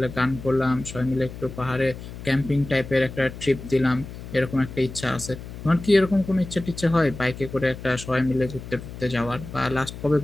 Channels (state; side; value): noise; left; hum, 12 dB below the sound